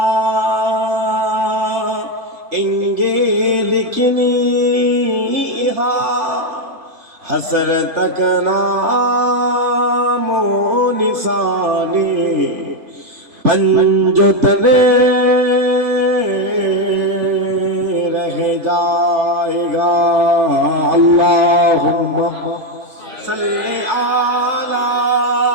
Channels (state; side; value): late; left; 3.4 ms